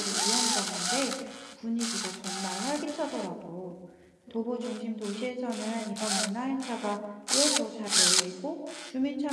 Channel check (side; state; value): both; identical; correlation 1.00